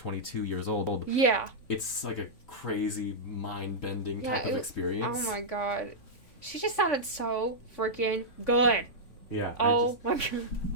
years old. Yeah. It's like a crazy, mind-bending type of experience. Oh my god. She just sounded so freaking good. Yeah. Oh my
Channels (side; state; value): right; late; 3.5 ms